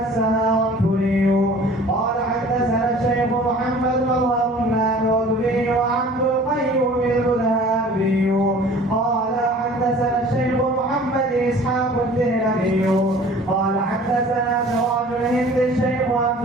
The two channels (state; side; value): normal; both; correlation 0.47